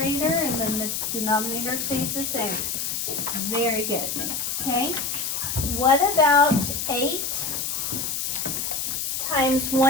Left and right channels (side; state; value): left; noise; hiss, 2 dB below the sound